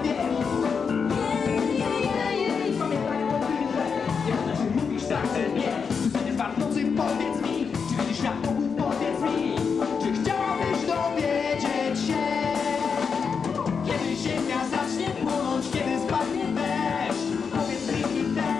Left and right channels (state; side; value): quieter; right; 5.9 dB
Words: wiesz. Pamiętaj o tym, że nie można, że mówisz tak, że nie. Codziennie w nocy powiedz mi, czy widzisz świat wokół, powiedz mi. Czy chciałabyś dowiedzieć się, kiedy ziemia zacznie płonąć, kiedy spadnie deszcz. Powiedz mi,